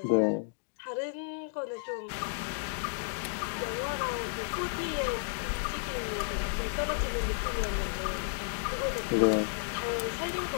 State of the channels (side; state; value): right; silent; digital silence